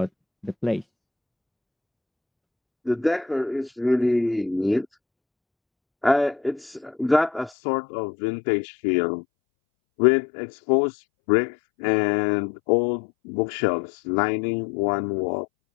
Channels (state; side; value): drops out; right; at 7.5 s